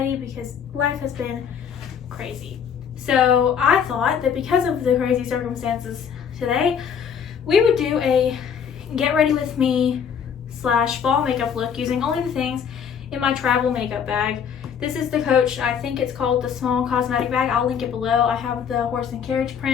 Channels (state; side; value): quieter; right; 7.5 dB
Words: because life has been crazy. So I thought that because of the crazy circumstances today, we would do a get ready with me / fall makeup look using only the things in my travel makeup bag. This is the Coach, I think it's called the small cosmetic bag. I'll link it below. I have the horse and carriage